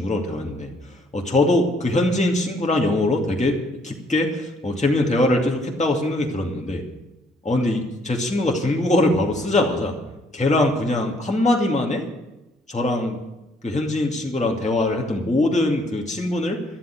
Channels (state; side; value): normal; both; correlation 0.65